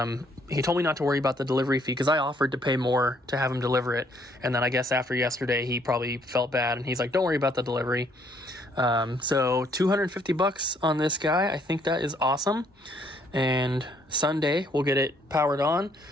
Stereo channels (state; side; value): normal; both; correlation 0.66